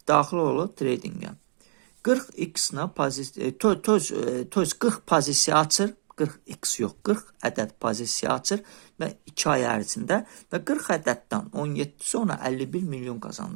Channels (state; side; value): silent; left; digital silence